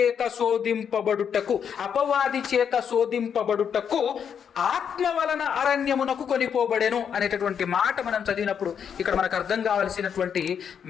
శోధింపబడుటకు ఆత్మ వలన అరణ్యమునకు కొనిపోబడెను అనేటటువంటి మాట మనం చదివినప్పుడు ఇక్కడ మనకు అర్థం కావాల్సినటువంటి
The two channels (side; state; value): right; quieter; 7.7 dB